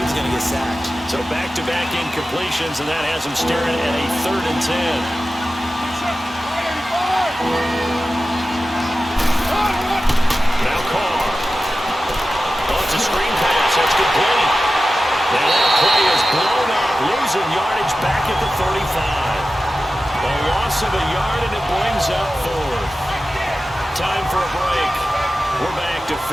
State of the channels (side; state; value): both; normal; correlation 0.94